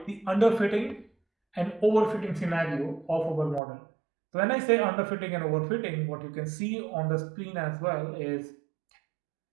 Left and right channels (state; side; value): drops out; left; at 3.6 s